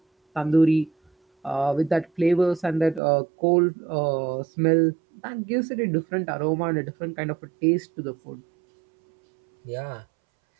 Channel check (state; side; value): drops out; left; at 3.0 s